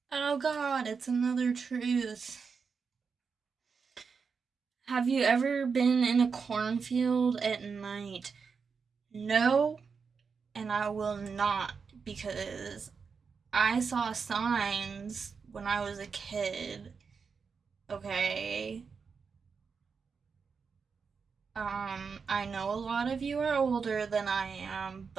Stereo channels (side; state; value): left; quieter; 5.5 dB